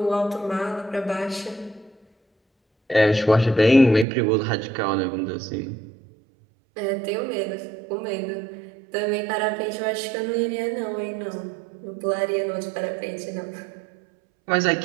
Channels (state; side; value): drops out; left; at 4.0 s